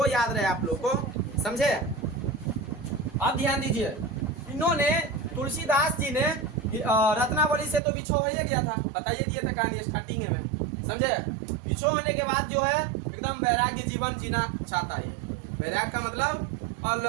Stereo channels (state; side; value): drops out; left; at 7.8 s